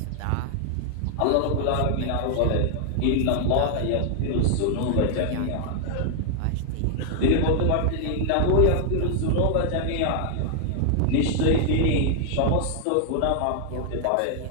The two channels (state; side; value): different; both; correlation 0.00